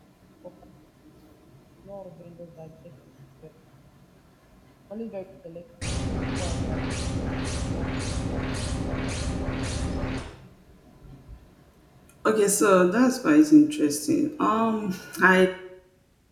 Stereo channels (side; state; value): both; identical; correlation 1.00